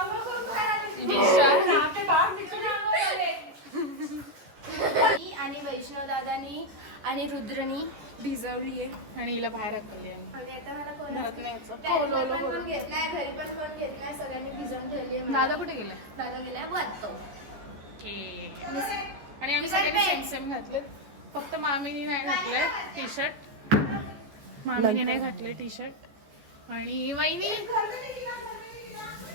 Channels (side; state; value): left; late; 14 ms